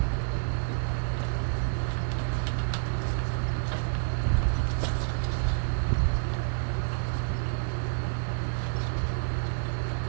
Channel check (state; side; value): silent; left; digital silence